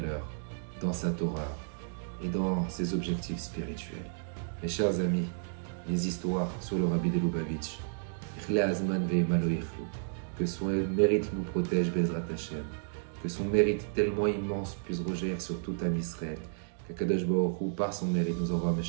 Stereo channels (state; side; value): silent; left; digital silence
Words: dans sa Torah et dans ses objectifs spirituels. Mes chers amis, les histoires sur le Rabbi de Lubavitch, que son mérite nous protège, Be'ezrat Hashem, que son mérite tellement immense puisse rejaillir sur tout Am Israël, que Kadosh Baruch Hu, par son mérite, nous envoie